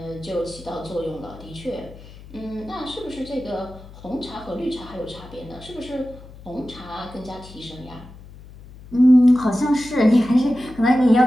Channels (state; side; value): noise; left; hum, 18 dB below the sound